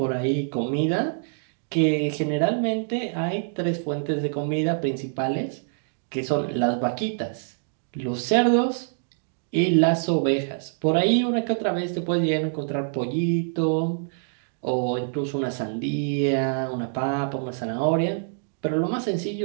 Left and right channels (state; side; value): silent; left; digital silence